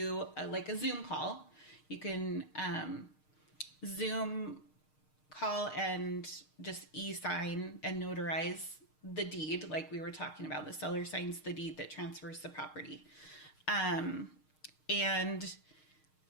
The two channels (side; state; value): right; late; 6.5 ms